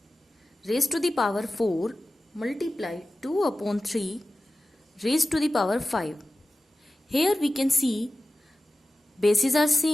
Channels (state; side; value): normal; both; correlation 0.95